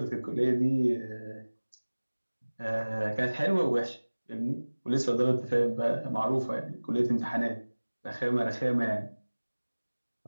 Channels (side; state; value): both; inverted; correlation -1.00